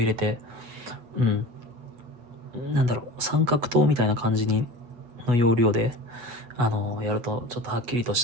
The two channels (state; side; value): late; left; 8.3 ms